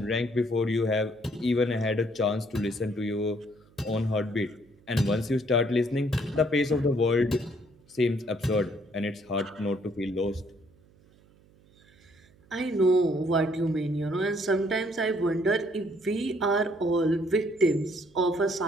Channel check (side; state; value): right; noise; hum, 29 dB below the sound